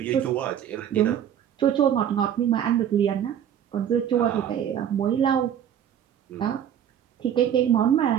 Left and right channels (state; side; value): quieter; left; 9.6 dB